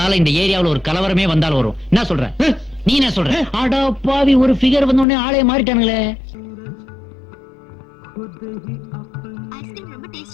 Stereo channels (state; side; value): drops out; right; at 5.1 s